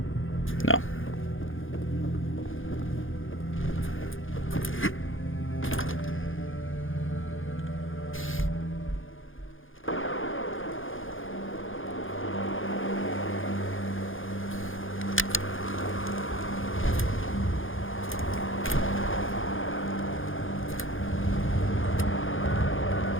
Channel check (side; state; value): right; late; 0.58 ms